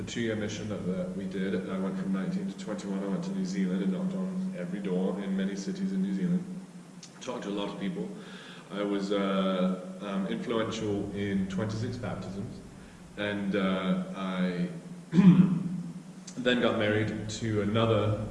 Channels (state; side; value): identical; both; correlation 1.00